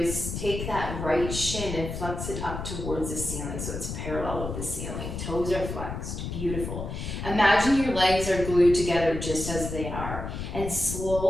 take that right shin and flex it up towards the ceiling so it's parallel with the ceiling. Toes are flexed. Beautiful. Imagine your legs are glued together just as they are. And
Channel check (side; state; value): left; noise; rumble, 6 dB below the sound